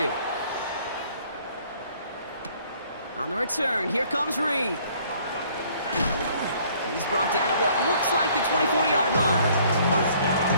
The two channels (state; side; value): inverted; both; correlation -0.59